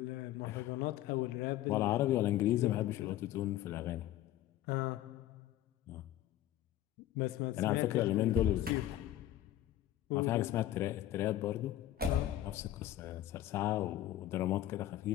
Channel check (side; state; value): right; quieter; 13.2 dB